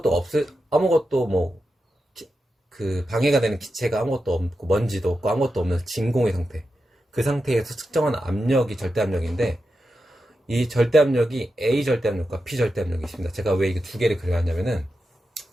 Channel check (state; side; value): normal; both; correlation 0.89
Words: 그 방해가 되는 기체가 아무것도 없고 먼지도 없고 아무것도 없는 진공의 상태, 그 상태에서 측정한 압력이 절대압력인데, 이 절대압력이 A 절대압력과 B 절대압력이 있습니다. 제가 왜 이게 두 개를 그려놨냐면은,